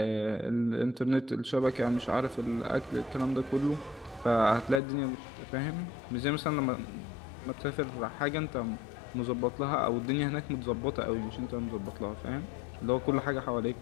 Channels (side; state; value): right; drops out; at 4.8 s